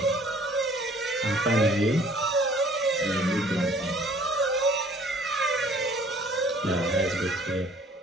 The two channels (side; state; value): both; normal; correlation 0.55